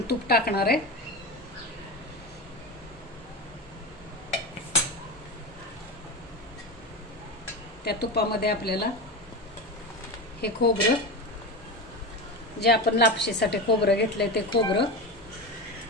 तूप टाकणार आहे। त्या तुपामध्ये आपल्याला हे खोबरं, जे आपण लापशीसाठी खोबरं घेतलंय ते खोबरं,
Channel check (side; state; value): both; normal; correlation 0.22